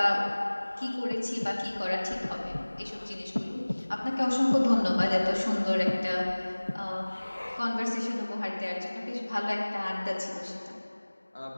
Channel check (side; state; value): both; inverted; correlation -1.00